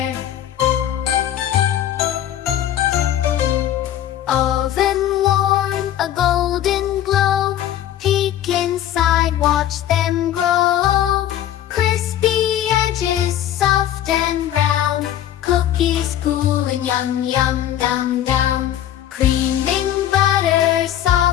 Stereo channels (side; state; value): right; quieter; 11.7 dB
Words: Oven warm, a golden glow, peek inside, watch them grow. Crispy edges, soft and brown, cookies cooling, yum yum down down. Creaming butter